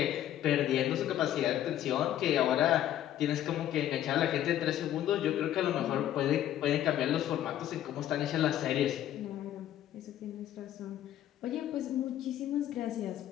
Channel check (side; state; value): right; quieter; 11.9 dB